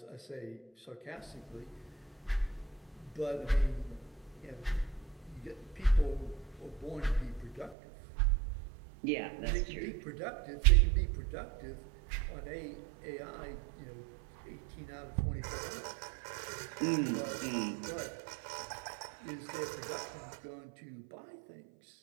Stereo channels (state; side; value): drops out; left; at 7.8 s